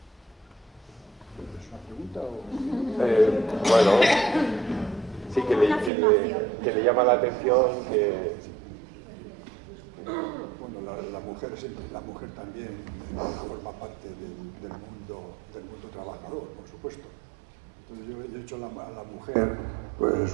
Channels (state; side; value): drops out; left; at 5.9 s